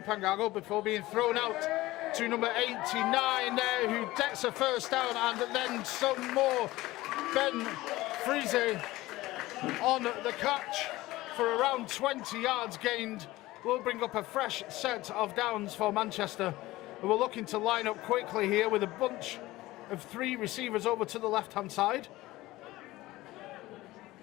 Pangago before being thrown out to number 89 there, who gets a first down, and then some more. Ben Friese on the catch for around 20 yards gained. Will bring up a fresh set of downs for Manchester, who are looking to line up quickly here with a bunch of 3 receivers over to the left-hand side.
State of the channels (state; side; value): quieter; right; 18.2 dB